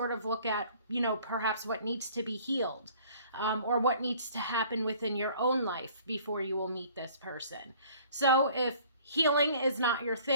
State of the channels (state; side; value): inverted; both; correlation -0.53